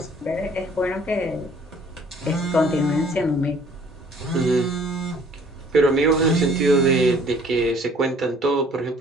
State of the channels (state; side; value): normal; both; correlation 0.56